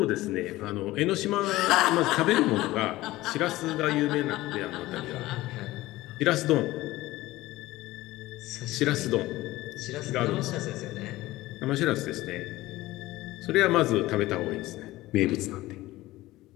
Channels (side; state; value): right; quieter; 17.7 dB